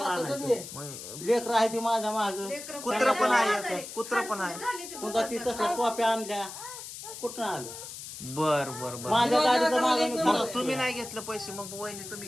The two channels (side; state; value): left; noise; hiss, 11 dB below the sound